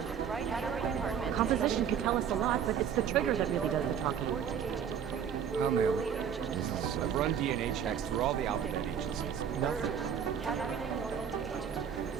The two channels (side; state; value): left; quieter; 8.1 dB